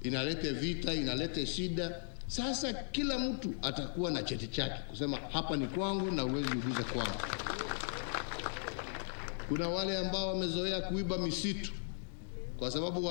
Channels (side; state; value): right; silent; 53 dB below the other